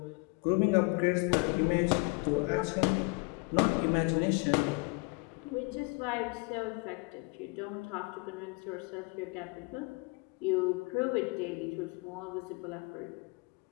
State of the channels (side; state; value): right; quieter; 29.5 dB